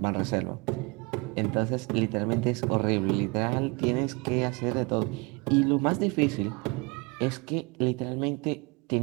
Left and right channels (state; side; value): quieter; left; 28.1 dB